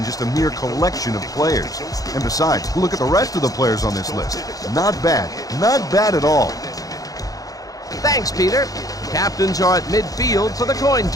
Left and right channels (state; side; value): late; right; 0.17 ms